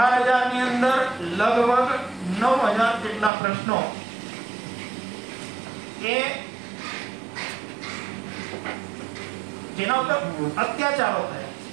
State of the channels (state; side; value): drops out; left; at 3.3 s